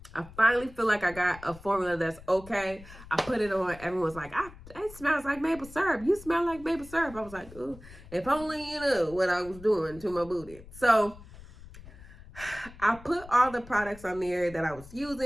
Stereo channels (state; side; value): noise; left; rumble, 18 dB below the sound